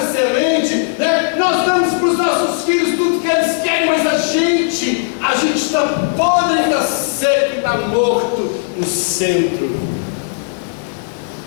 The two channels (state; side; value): silent; right; digital silence